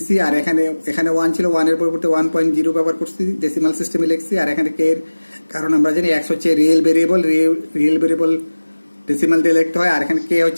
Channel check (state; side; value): inverted; both; correlation -1.00